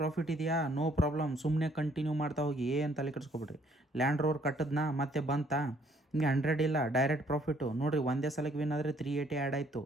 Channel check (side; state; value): both; normal; correlation 0.64